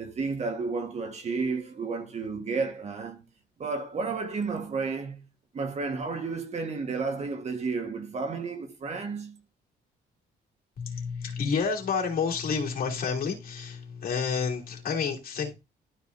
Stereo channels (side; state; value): both; normal; correlation 0.43